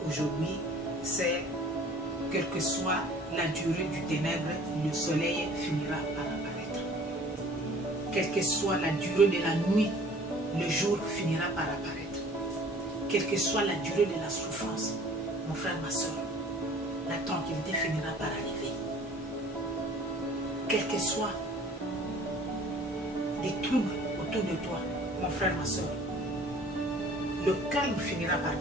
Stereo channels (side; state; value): both; normal; correlation 0.50